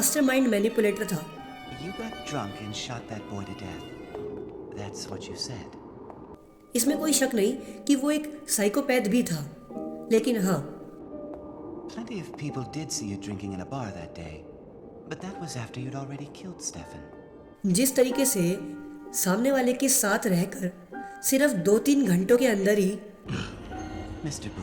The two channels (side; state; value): both; identical; correlation 1.00